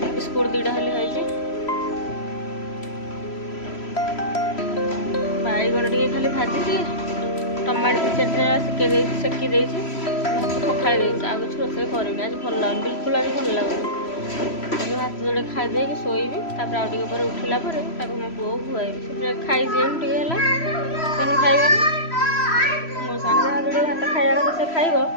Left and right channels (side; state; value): right; late; 3.0 ms